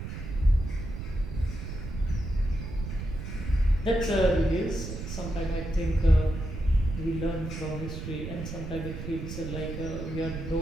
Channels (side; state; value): right; noise; rumble, 7 dB below the sound